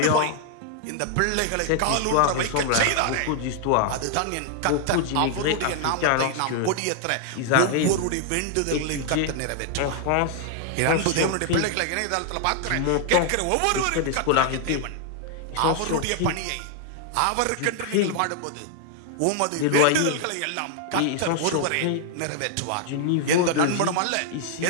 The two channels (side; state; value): both; different; correlation 0.00